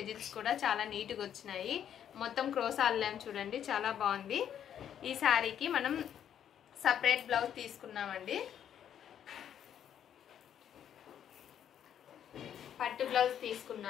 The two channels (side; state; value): right; quieter; 9.5 dB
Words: కూడా చాలా నీట్ గా వచ్చినాయి మొత్తం క్రోసా అల్లాం చూడండి చాలా బాగుంది ఈ శారీకి మనం సెపరేట్ బ్లౌజ్ తీసుకున్నామండి పట్టు బ్లౌజ్